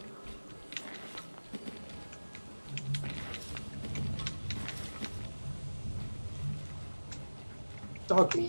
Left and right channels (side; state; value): both; inverted; correlation -1.00